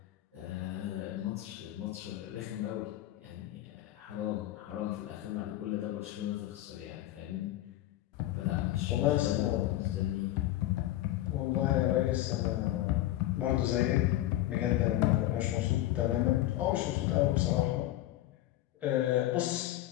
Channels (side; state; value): right; quieter; 14.8 dB